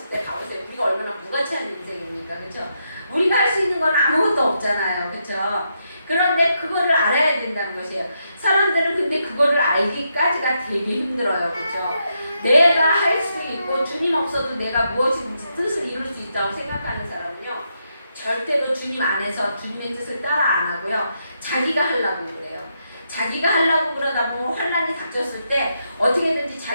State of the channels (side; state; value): both; inverted; correlation -0.81